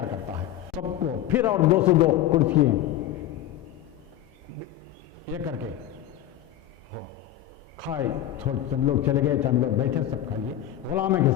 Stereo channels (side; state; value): right; quieter; 12.5 dB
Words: کرتا ہے۔ سب کو پھر اور 202 کرسیاں یہ کر کے ہو کھائے، تھوڑے تم لوگ چلے گئے، چند لوگ بیٹھے، سب کھا لیے غلاموں کے